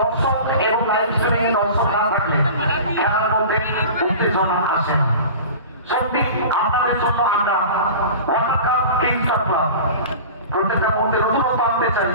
এবং লাইভ স্ট্রিমিং এ দর্শক না থাকলে খেলার মধ্যে উত্তেজনা আসে না। সত্যি আপনাদের জন্য আমরা ওয়ার্ল্ড কাপ কিংস ক্লাব প্রত্যেকটা মধ্যে নতুনত্ব আনতে চাই।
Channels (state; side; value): inverted; both; correlation -0.37